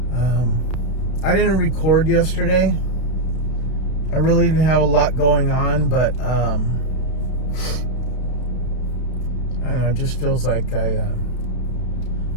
I didn't record yesterday. I really didn't have a lot going on, but I don't know, it just feels like I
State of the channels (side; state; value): right; late; 32 ms